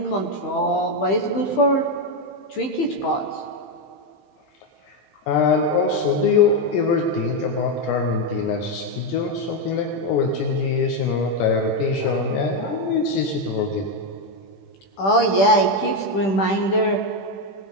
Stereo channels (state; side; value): late; right; 15 ms